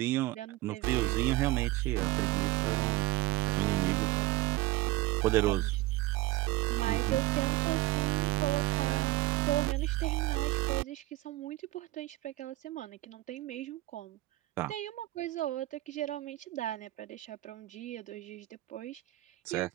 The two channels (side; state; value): left; quieter; 17.6 dB